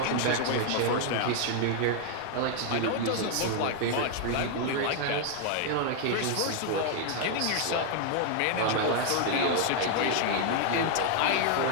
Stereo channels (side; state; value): both; different; correlation 0.00